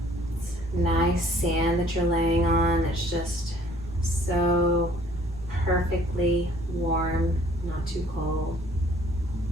It's nice sand that you're laying on that's just so perfectly warm, not too cold.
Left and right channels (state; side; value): noise; left; rumble, 15 dB below the sound